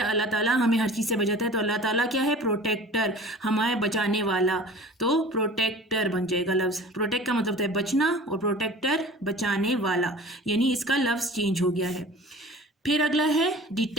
ताला हमें हर चीज़ से बचाता है, तो अल्लाह ताला क्या है? प्रोटेक्टर, हमारे बचाने वाला, तो प्रोटेक्टर बन जाएगा लफ्ज़। प्रोटेक्ट का मतलब होता है बचना और प्रोटेक्टर बचाने वाला, यानी इसका लफ्ज़ चेंज हो गया है। फिर अगला है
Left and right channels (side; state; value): both; normal; correlation 0.42